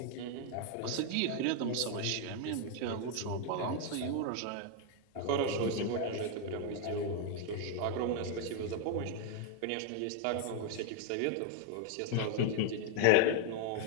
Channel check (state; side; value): different; both; correlation 0.00